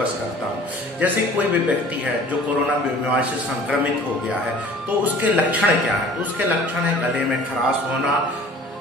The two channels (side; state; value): both; normal; correlation 0.47